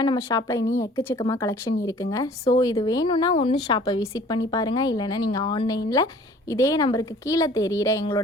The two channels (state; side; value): normal; both; correlation 0.51